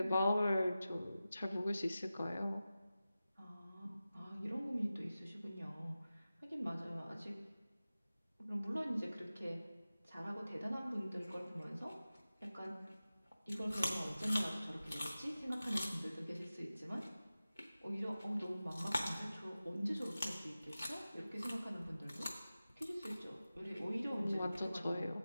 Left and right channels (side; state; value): both; inverted; correlation -0.95